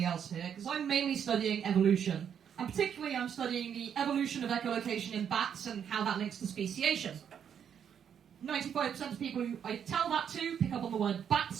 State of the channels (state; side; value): quieter; left; 8.3 dB